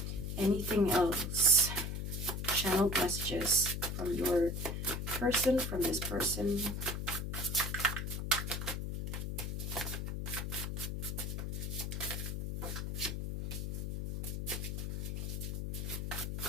Anything else? Channeled messages from your person, from this person.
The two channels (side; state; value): left; noise; hum, 3 dB below the sound